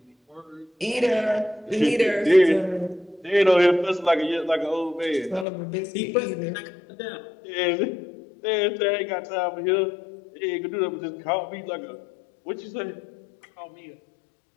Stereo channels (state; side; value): drops out; right; at 5.5 s